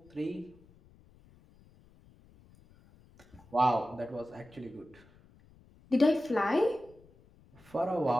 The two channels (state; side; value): noise; left; rumble, 27 dB below the sound